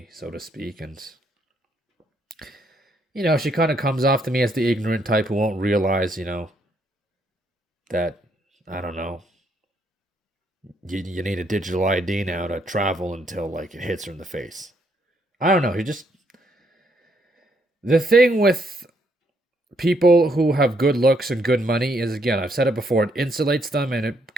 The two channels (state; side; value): normal; both; correlation 0.73